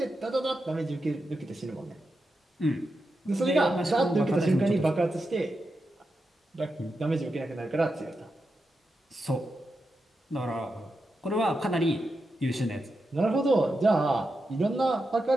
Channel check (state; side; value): normal; both; correlation 0.88